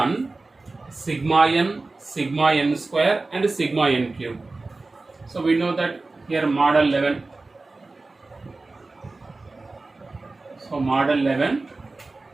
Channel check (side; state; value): left; quieter; 3.4 dB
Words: sigma n square, and sigma n cube. So, we know that here model 11. So, model 11.